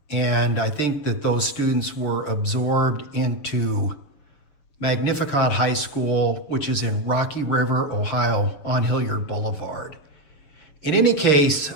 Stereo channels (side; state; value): right; late; 6.9 ms